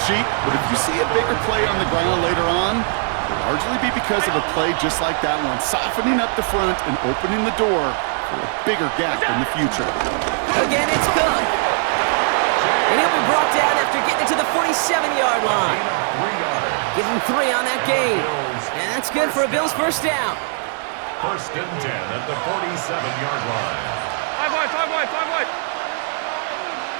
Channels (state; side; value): silent; left; 56 dB below the other